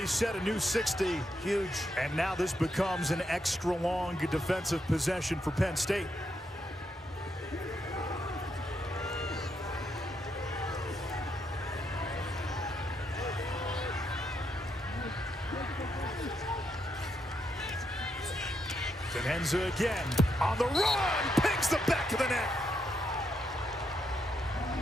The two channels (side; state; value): both; normal; correlation 0.79